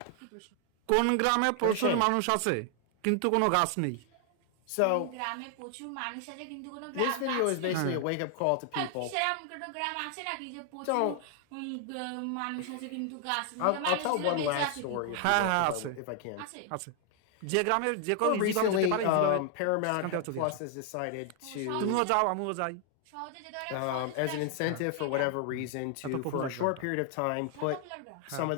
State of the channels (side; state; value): both; different; correlation 0.00